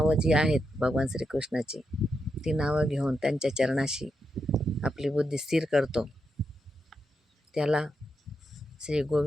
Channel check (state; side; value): normal; both; correlation 0.84